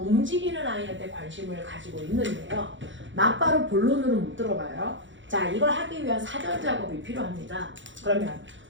아이한테 관심을 가지고 있는데요. 막바로 본론으로 못 들어가요. 자, 이걸 하기 위한 사전 작업이 필요합니다. 그러면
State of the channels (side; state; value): left; late; 0.55 ms